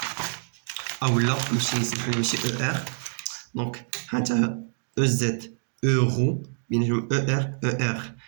اولا نمشي نسمحلو ماشي او ار. دونك هانتا او زد اورو بيناتهم او ار او ار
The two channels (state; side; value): silent; left; digital silence